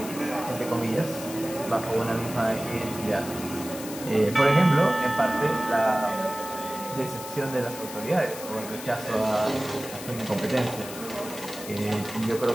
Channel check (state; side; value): noise; left; hiss, 12 dB below the sound